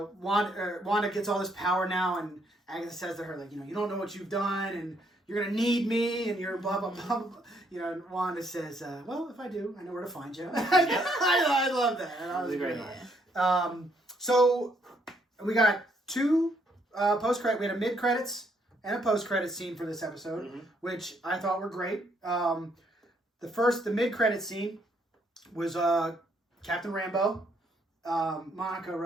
gets all this power now, and Agatha says to her, like, you don't know what you've done, and you're going to need me, and you're blah, blah, blah, blah. And Wanda says, well, if I do, I know where to find you. I love that. That was a great line. So we got two post-credit. We had a mid-credits and a post-credit scene for this episode, which I thought were great. The mid-credit scene was Captain Rambeau, Monica,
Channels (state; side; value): normal; both; correlation 0.71